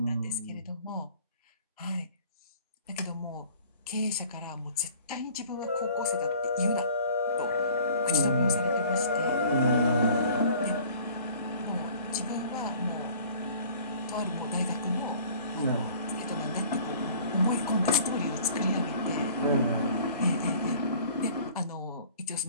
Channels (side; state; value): both; inverted; correlation -0.50